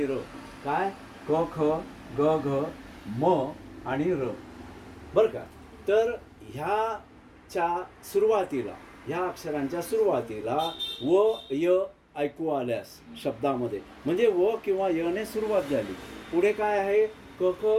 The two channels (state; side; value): identical; both; correlation 1.00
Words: र. काय क ख ग घ म आणि र, बरं का. तर ह्याच्या सुरुवातीला, ह्या अक्षरांच्या सुरुवातीला व य ऐकू आल्यास शब्दामध्ये म्हणजे व किंवा यने सुरुवात झाली, पुढे काय आहे क ख